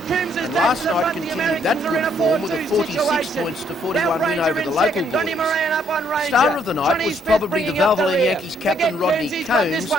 And last night continued that good form with a 46 points to 41 win over the local boys. Star of the night was probably the Valvoline Yankees captain Rodney Combs,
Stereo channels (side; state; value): both; normal; correlation 0.69